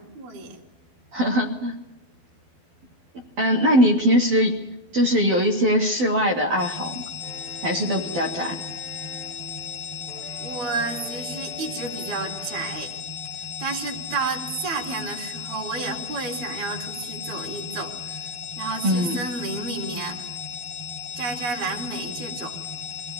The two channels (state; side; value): late; left; 12 ms